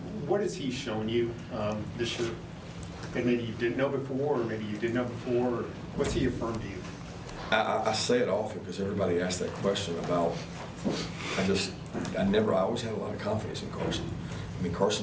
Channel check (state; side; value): identical; both; correlation 1.00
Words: What has he shown you this year that maybe you didn't know before, or maybe you did know before? Or what's he affirmed to you? I say it often because everybody asks that question about, I always had a lot of confidence in Carson. I mean,